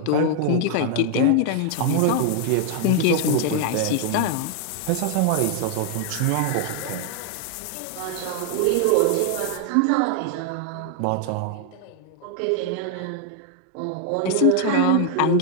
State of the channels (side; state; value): both; different; correlation 0.00